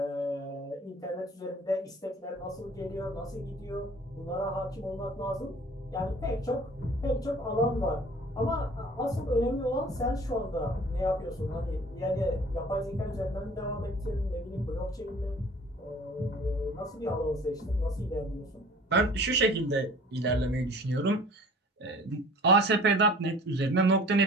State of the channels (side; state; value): both; normal; correlation 0.48